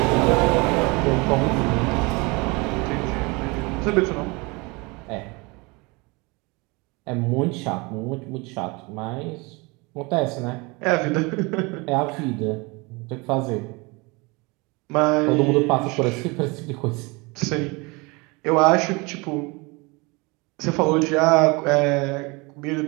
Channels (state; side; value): quieter; left; 26.8 dB